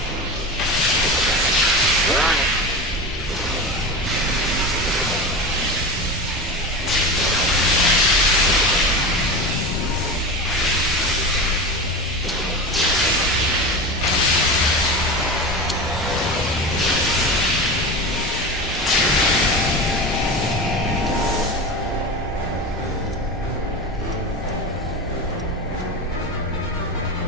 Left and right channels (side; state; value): both; normal; correlation 0.26